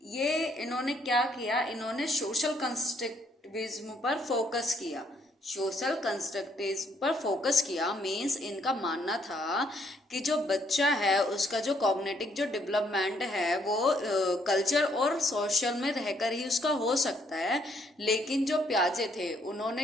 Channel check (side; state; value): both; normal; correlation 0.69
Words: ये इन्होंने क्या किया, इन्होंने सोशल कंस्ट्रक्टिविज्म पर फोकस किया। सोशल कंस्ट्रक्टिविज्म पर फोकस किया मीन्स इनका मानना था कि जो बच्चा है उसका जो कॉग्निटिव जो डेवलपमेंट है वो कल्चर और सोशल में रहकर ही उसका हो सकता है। लेकिन जो प्याजे थे